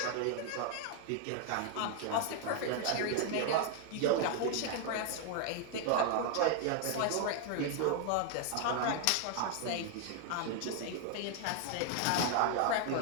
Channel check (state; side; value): different; both; correlation 0.00